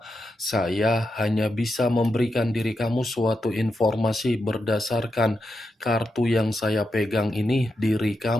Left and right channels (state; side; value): normal; both; correlation 0.86